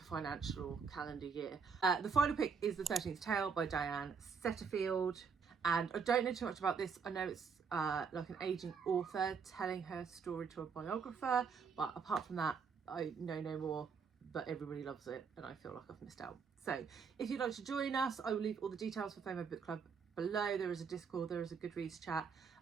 financial, or calendar year. The final pick is The 13th Tale by Diane Setterfield. And I don't know too much about this. I know it's like an aging author telling her story to a biographer, but apart from that, I know no more, but everybody loves it and I feel like I've missed out. So if you'd like to join us, I will leave all the details for FOMO Book Club below. There is a Discord, there is a Goodreads chat,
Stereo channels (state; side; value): quieter; left; 5.9 dB